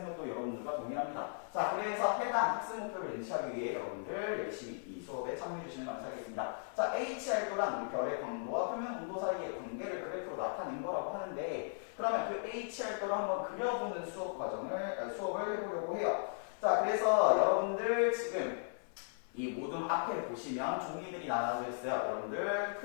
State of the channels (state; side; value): silent; right; 53 dB below the other